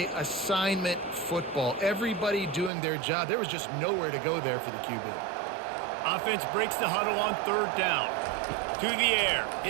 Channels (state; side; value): drops out; left; at 2.7 s